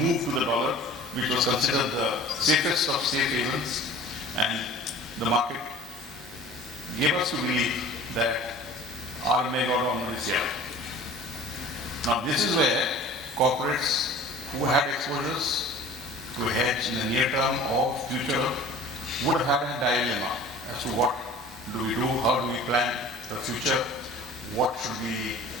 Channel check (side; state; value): both; normal; correlation 0.44